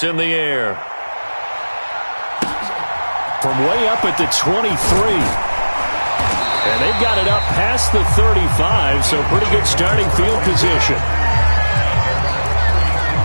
in the air. From way up at the 23. And they've got it up past the 35, so pretty good starting field position.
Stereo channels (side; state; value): both; inverted; correlation -1.00